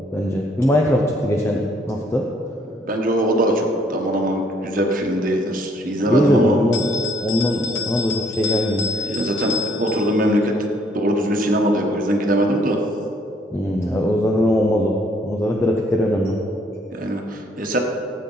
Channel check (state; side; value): normal; both; correlation 0.65